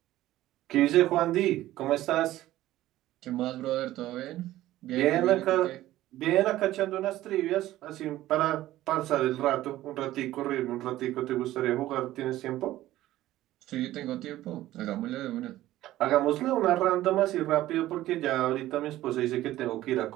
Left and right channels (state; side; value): quieter; left; 15.0 dB